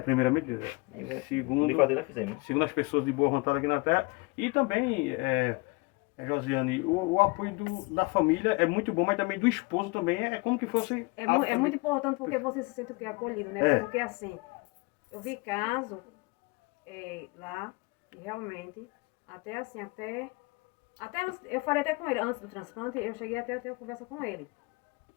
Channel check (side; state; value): right; quieter; 27.0 dB